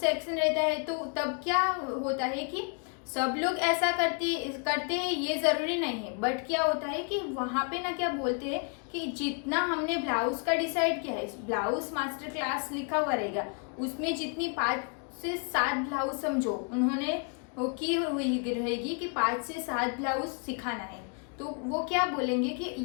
रहता है तो तब क्या होता है कि सब लोग ऐसा करते हैं, ये जरूरी नहीं है। बट क्या होता है कि वहाँ पे ना क्या बोलते हैं कि जितना हमने ब्लाउज का डिसाइड किया है, ब्लाउज मास्टर क्लास लिखा हुआ रहेगा, उसमें जितनी 5 से 7 ब्लाउज समझो उन्होंने वो की हुई रहेगी कि 5 से 7 ब्लाउज सिखाना है। तो वो क्या बोलेंगे कि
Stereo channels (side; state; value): right; quieter; 39.3 dB